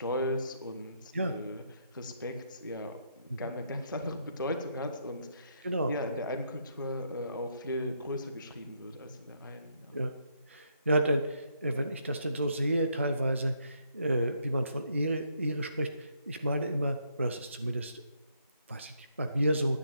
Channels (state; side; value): inverted; both; correlation -0.74